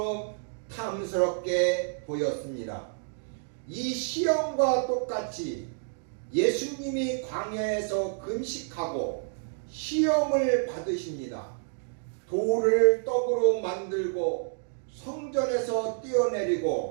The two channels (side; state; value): left; silent; digital silence